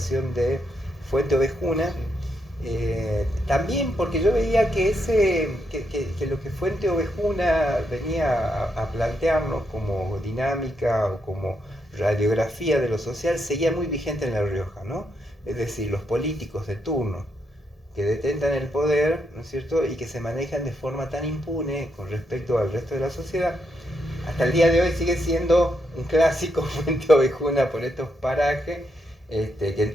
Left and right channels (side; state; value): both; normal; correlation 0.80